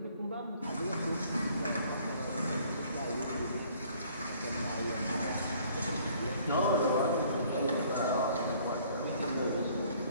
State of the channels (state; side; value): inverted; both; correlation -0.58